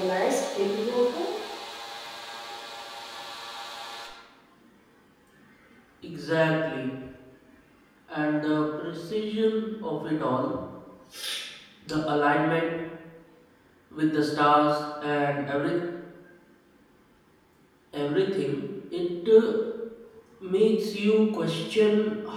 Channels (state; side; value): identical; both; correlation 1.00